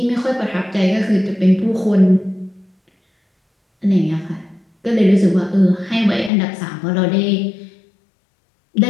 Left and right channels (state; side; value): drops out; right; at 6.3 s